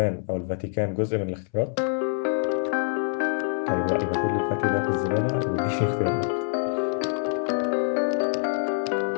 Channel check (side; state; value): right; silent; 61 dB below the other